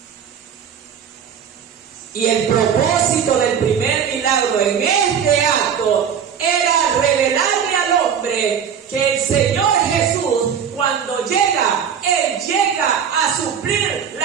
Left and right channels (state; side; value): quieter; left; 7.8 dB